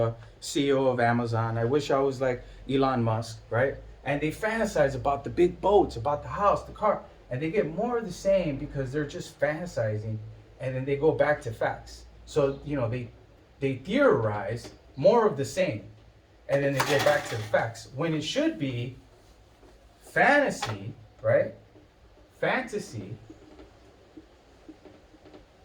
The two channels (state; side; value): identical; both; correlation 1.00